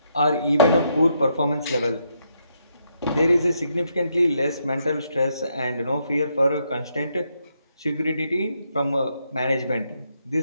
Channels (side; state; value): both; inverted; correlation -0.77